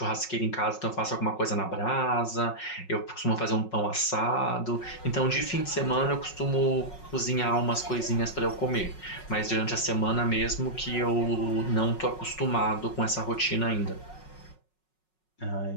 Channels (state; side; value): late; right; 5.4 ms